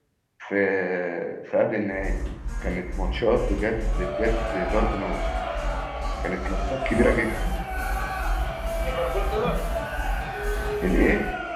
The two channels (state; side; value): identical; both; correlation 1.00